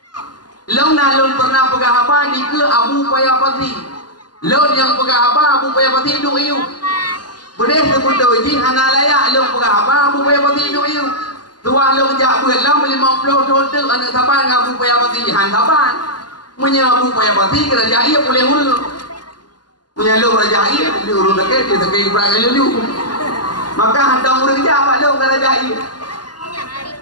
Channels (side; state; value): right; late; 0.70 ms